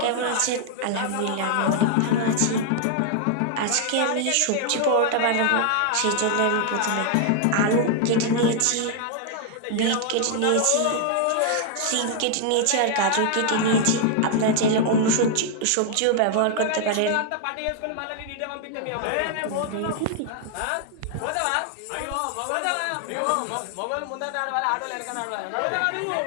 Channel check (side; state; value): both; different; correlation 0.00